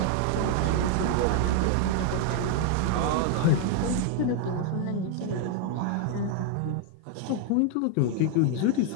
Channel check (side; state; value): both; different; correlation 0.00